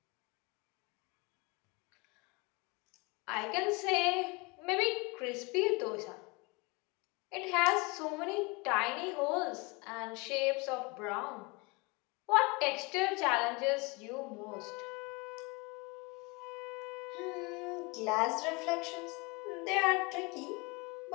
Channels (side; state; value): right; quieter; 27.6 dB